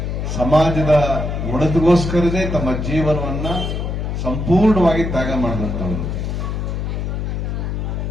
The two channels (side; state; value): left; noise; hum, 2 dB below the sound